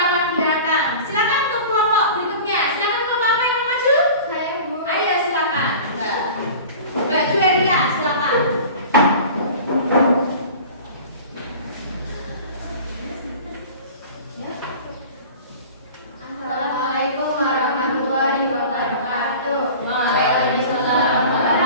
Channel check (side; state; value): both; inverted; correlation -0.39